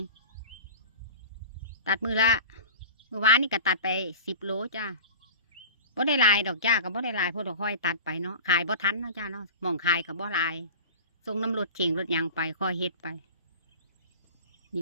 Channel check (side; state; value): both; inverted; correlation -0.37